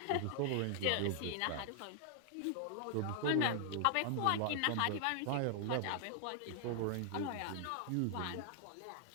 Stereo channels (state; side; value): different; both; correlation -0.01